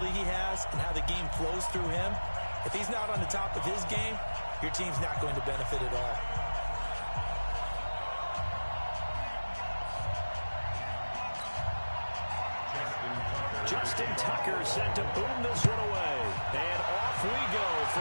he has and how the game flows through him, if he's not on the top of his game, your team's not going to benefit at all. Justin Tucker set to boom this one away. And off we go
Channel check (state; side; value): inverted; both; correlation -1.00